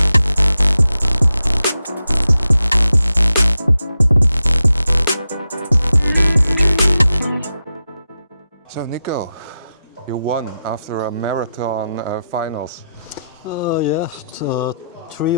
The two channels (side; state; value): both; inverted; correlation -0.88